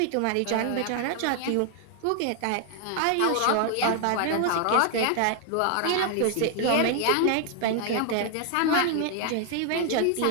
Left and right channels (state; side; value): different; both; correlation 0.00